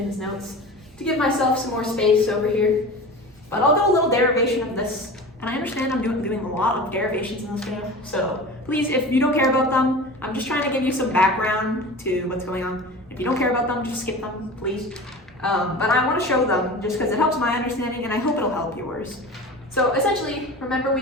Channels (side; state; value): both; normal; correlation 0.34